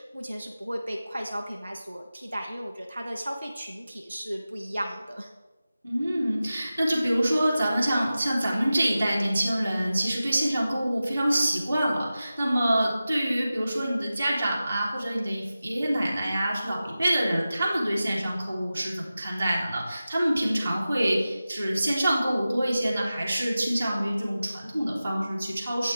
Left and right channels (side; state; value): both; inverted; correlation -0.94